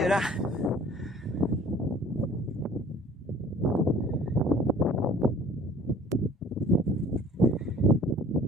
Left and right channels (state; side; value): normal; both; correlation 0.50